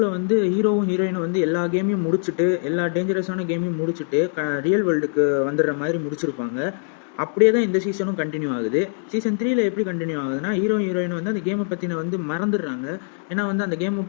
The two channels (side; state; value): right; silent; 64 dB below the other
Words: வந்து ஹீரோவும் ஹீரோயினும் வந்து எல்லா கேமையும் முடிச்சுட்டு, எல்லா டேஞ்சரஸான கேமையும் முடிச்சுட்டு ரியல் வேர்ல்டுக்கு வந்துடுற மாதிரி முடிச்சிருப்பாங்க. அப்படியே தான் இந்த சீசனும் கண்டினியூ ஆகுது. சீசன் 3ல் எப்படி கண்டினியூ ஆகுதுன்னா, ஹீரோயின் வந்து அந்த கேமை பற்றின வந்து மறந்துடுறாங்க. ஏன்னா வந்து அந்த கேம்